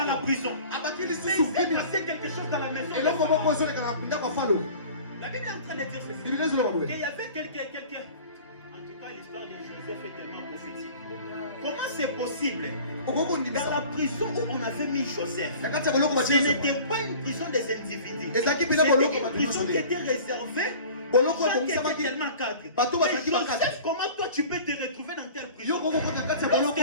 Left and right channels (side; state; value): both; inverted; correlation -0.43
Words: la prison. Mais il s'est passé quelque chose dans la maison. La Bible est en train de dire ceci. Qu'il y avait quelqu'un. En tout cas, l'histoire de Joseph est tellement prophétique. Comment c'est possible? Dans la prison où on avait mis Joseph, ce n'était pas une prison des individus. C'était une prison qui était réservée. Tellement cadre. Joseph, comment toi tu peux te retrouver dans telle prison?